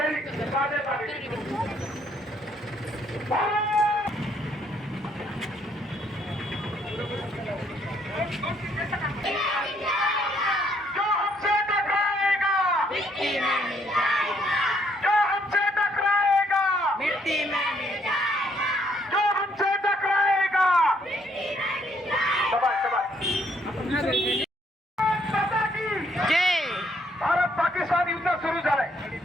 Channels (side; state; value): both; normal; correlation 0.69